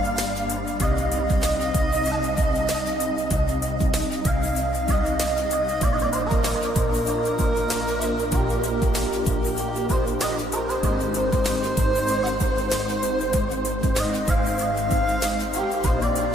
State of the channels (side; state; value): both; normal; correlation 0.72